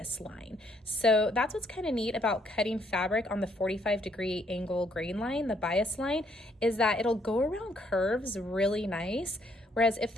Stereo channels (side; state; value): both; normal; correlation 0.69